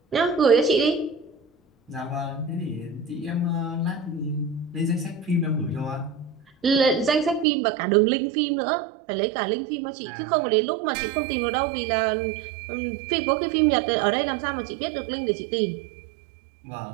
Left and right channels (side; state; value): left; drops out; at 7.5 s